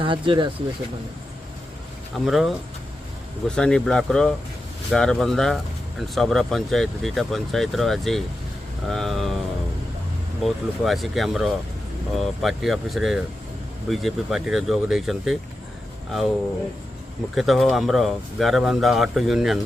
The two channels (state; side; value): normal; both; correlation 0.90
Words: ଆସିବେ ସେମାନେ? ଆମର ଗୋସାନି ବ୍ଲକର ଗାରବନ୍ଧା ଆଣ୍ଡ ସବରା ପଞ୍ଚାୟତ ଦୁଇଟା ପଞ୍ଚାୟତର ଆଜି ବହୁତ ଲୋକ ଆସିକି ଆମର ପାର୍ଟି ଅଫିସରେ ବିଜେପି ପାର୍ଟିରେ ଯୋଗ ଦେଇଛନ୍ତି। ଆଉ ମୁଖ୍ୟତଃ ଆମର ଗାରବନ୍ଧା ଅଟୋ ୟୁନିୟନ